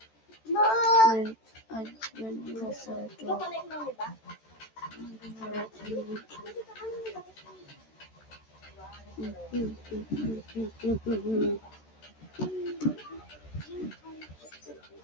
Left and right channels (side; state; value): right; late; 13 ms